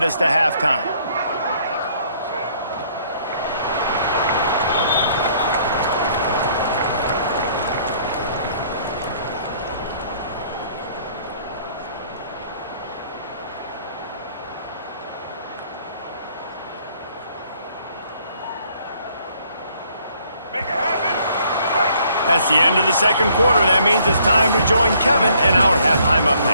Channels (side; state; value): both; inverted; correlation -0.63